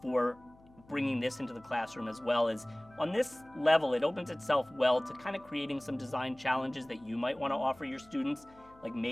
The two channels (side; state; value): left; noise; hum, 26 dB below the sound